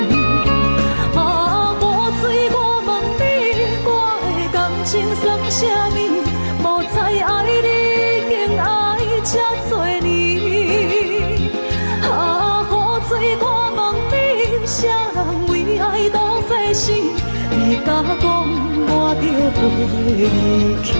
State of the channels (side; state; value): both; inverted; correlation -1.00